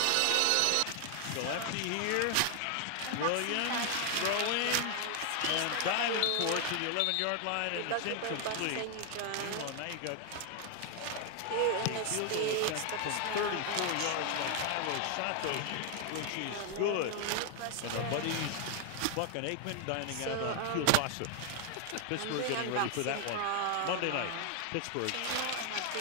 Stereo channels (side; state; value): both; different; correlation 0.00